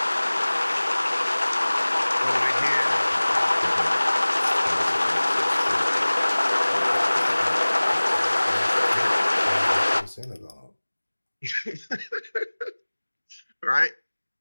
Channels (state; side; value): inverted; both; correlation -1.00